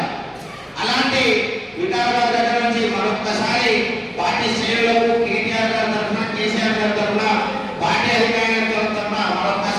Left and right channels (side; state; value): both; identical; correlation 1.00